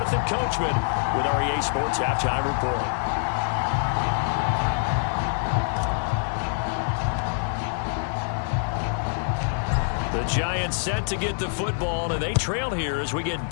Coachman with our EA Sports Halftime Report. The Giants set to get the football, and they trail here as we get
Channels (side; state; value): right; silent; digital silence